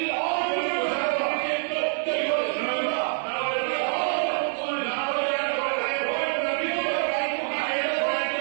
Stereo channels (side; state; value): left; silent; 61 dB below the other